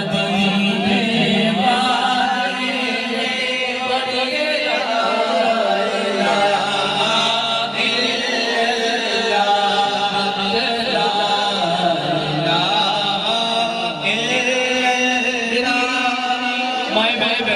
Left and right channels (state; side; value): identical; both; correlation 1.00